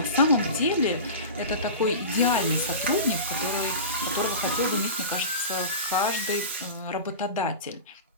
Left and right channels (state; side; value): inverted; both; correlation -0.31